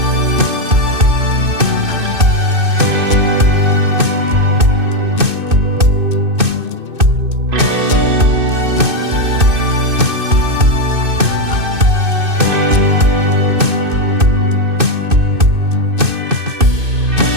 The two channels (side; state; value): left; late; 2.6 ms